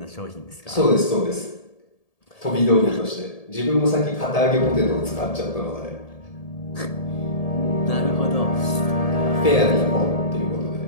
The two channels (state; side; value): late; right; 1.8 ms